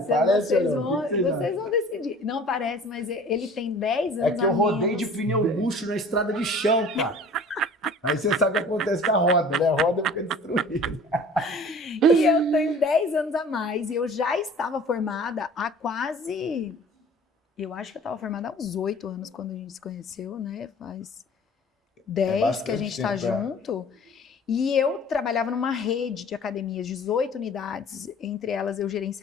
Parece vocês ou não? vão, O que vocês acham? vão decidir. Não parece, mas ele tem 10 anos É que eu a rodei menos. de pneu luxo na estrada de chão, cara. Aí você sabe o que acontece com a roda, né? A roda fica destruída. E eu tenho 10 anos a mais. E eu já estava formada há quase... Eu acho que eu estava formada há uns 8 anos quando a gente se conheceu, né? Faz 10 bastante que a gente está tempo, é. junto. E eu trabalhava numa rede de academias, 18 unidades. Entre elas, eu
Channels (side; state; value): both; normal; correlation 0.47